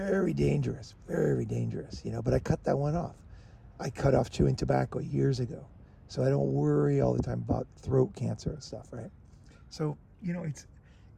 dangerous, but I cut that one off. I cut off chewing tobacco years ago. So I don't worry all the time about throat cancer and stuff, right? So,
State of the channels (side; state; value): both; identical; correlation 1.00